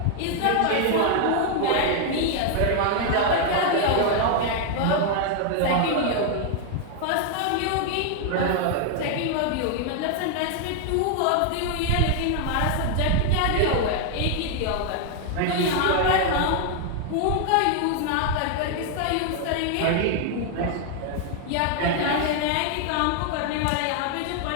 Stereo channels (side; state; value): both; different; correlation 0.00